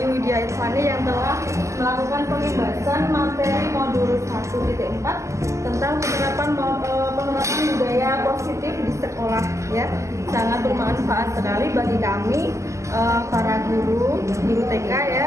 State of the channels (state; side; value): late; left; 0.14 ms